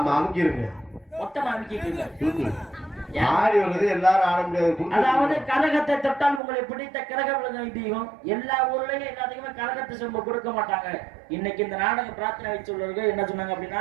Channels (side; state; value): left; drops out; at 6.4 s